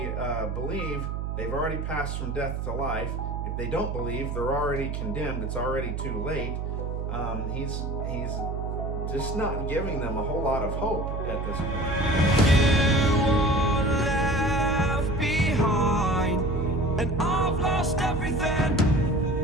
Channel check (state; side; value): noise; right; hum, 3 dB below the sound